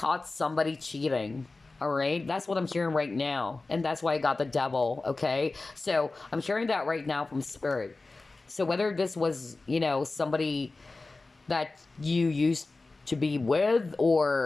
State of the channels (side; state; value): right; quieter; 3.5 dB